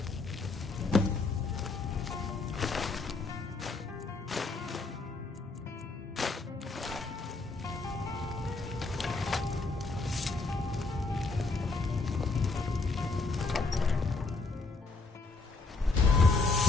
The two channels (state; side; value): quieter; right; 3.7 dB